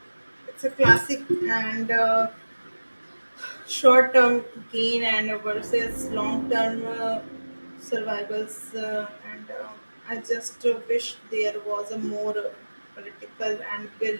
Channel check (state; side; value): inverted; both; correlation -1.00